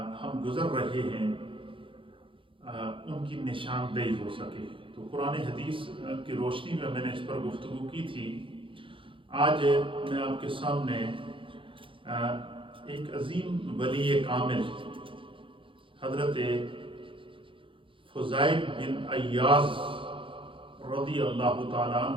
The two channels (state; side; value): late; left; 0.25 ms